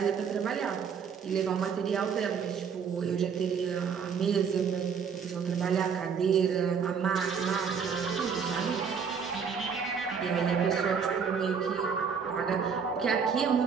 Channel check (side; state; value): left; quieter; 6.5 dB